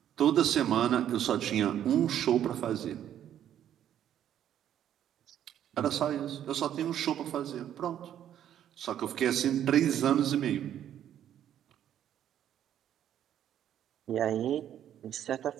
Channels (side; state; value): left; quieter; 10.6 dB